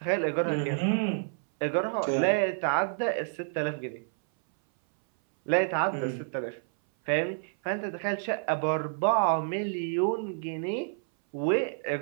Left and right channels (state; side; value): silent; left; 59 dB below the other